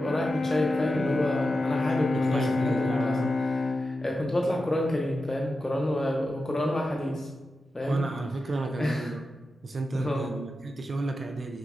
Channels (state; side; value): normal; both; correlation 0.91